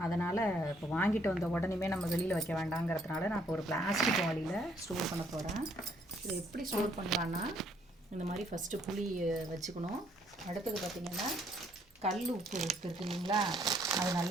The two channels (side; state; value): both; normal; correlation 0.67